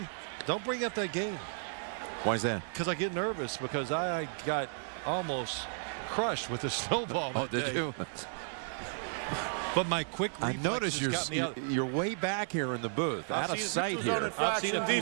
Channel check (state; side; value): silent; left; 55 dB below the other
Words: Don't bring up that game. Why is that? Because I get nervous, because I got almost crushed with the snowball. Oh, did you? But my quick reflexes I noticed you're way back here in the booth, out of sight here. I've seen